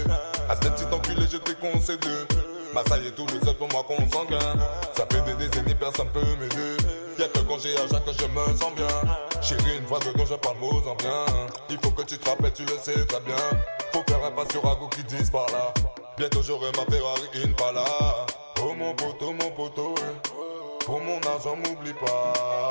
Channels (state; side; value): inverted; both; correlation -1.00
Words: À ce petit enculé je t'ai concédé. Bah ça y est tout le seul pour moi qu'on s'engaine. Ça fait des décennies personne peut m'aider. Y'a que quand j'ai à Jacques que je me sens bien. Chérie une fois dedans je parle mots en bien. Il faut que tu te rappelles tu le sais très bien. Faut faire un pas sur Rago qui disent par là. Bientôt j'aurai ma Ferrari Impala. Oh mon poteau pour mon argent m'oublie